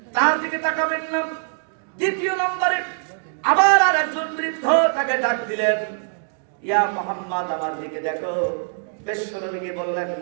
তার দিকে তাকাবেন না। দ্বিতীয় নম্বরে আবার আর একজন বৃদ্ধ তাকে ডাক দিলেন, ইয়া মুহাম্মদ আমার দিকে দেখো। বিশ্বনবীকে বললেন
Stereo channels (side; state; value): left; silent; digital silence